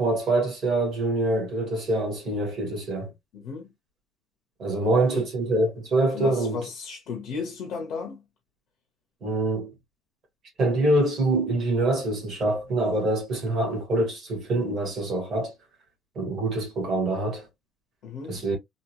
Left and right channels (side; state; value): both; normal; correlation 0.56